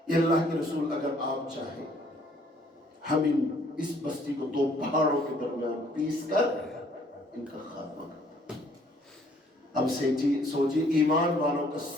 یہ اللہ کے رسول، اگر آپ چاہیں ہم اس بستی کو دو پہاڑوں کے درمیان پیس کر ان کا خاتمہ کرتے ہیں۔ اب سوچیے ایمان والوں کا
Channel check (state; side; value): normal; both; correlation 0.61